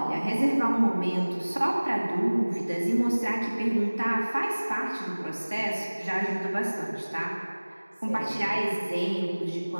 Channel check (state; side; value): inverted; both; correlation -1.00